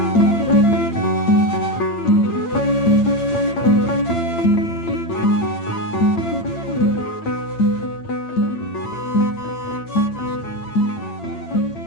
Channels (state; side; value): late; right; 8.8 ms